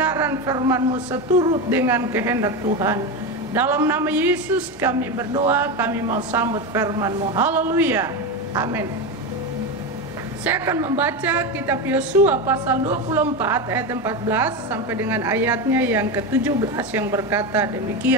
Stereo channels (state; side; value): normal; both; correlation 0.16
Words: firman-Mu seturut dengan kehendak Tuhan. Dalam nama Yesus kami berdoa, kami mau sambut firman-Mu. Haleluya, amin. Saya akan membaca kitab Yosua pasal 24 ayat 14 sampai dengan ayatnya yang ke-17 yang berkata